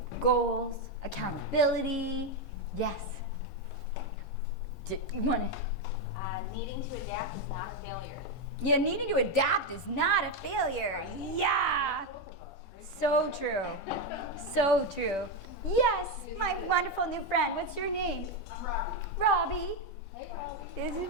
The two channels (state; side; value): normal; both; correlation 0.06